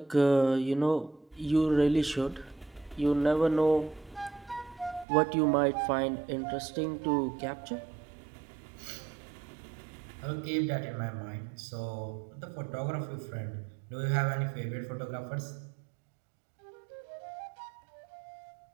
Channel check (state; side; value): drops out; left; at 5.1 s